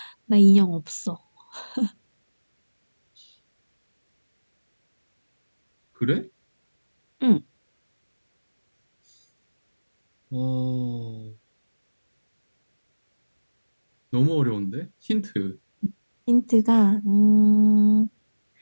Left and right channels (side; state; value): both; inverted; correlation -1.00